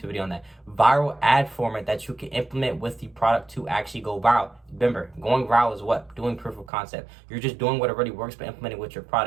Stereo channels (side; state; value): left; drops out; at 6.7 s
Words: video on that. Viral ad format that you can implement with the product to actually go viral. Remember, going viral is what? Doing proof of concept. You're just doing what already works, but implementing with your